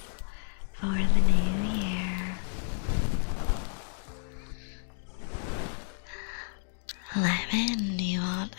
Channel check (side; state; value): right; silent; digital silence